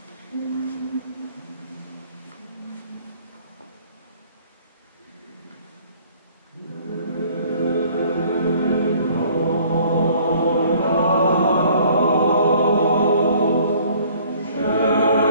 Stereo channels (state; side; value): inverted; both; correlation -0.56